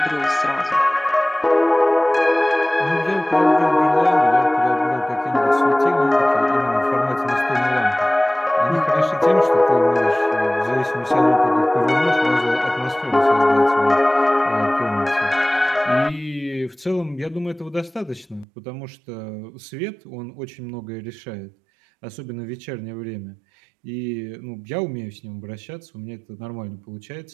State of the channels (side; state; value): left; drops out; at 18.4 s